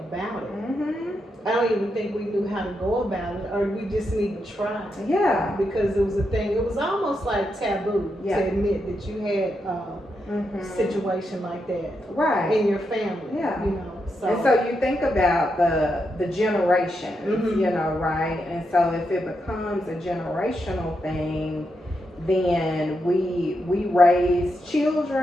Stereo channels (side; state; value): both; normal; correlation 0.84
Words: it. I don't even think we knew how to go about it, or we just need to try. Because it was a thing, it was almost like taboo to admit that you had a situation like that in your family. So. And so you think about the generations, right? And so if it becomes a generational thing, then we raise